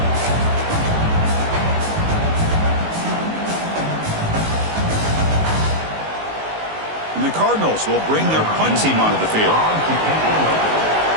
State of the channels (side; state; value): left; late; 19 ms